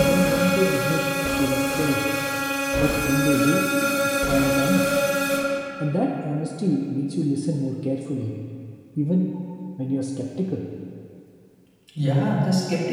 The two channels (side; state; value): both; identical; correlation 1.00